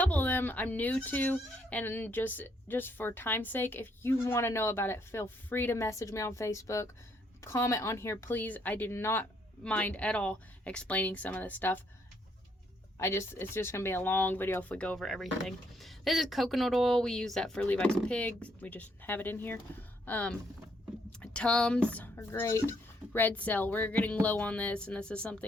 of them I'm new to, and just for time's sake, if you want to know about it, feel free to message me on Facebook, comment on here, please. I do not mind at all explaining some of this stuff. It's just gonna be a long video if we go over everything. This is coconut oil. We use that for Levi's pigs. We just have it in here. Tums are great. Red Cell, we're getting low on this, and this is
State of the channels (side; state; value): both; normal; correlation 0.71